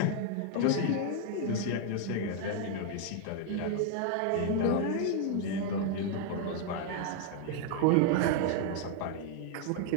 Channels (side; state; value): both; different; correlation 0.00